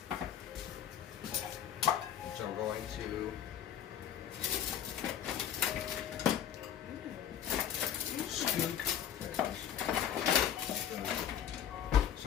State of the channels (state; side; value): quieter; right; 9.7 dB